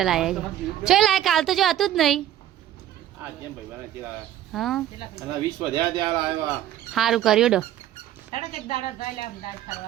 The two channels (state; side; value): quieter; left; 12.2 dB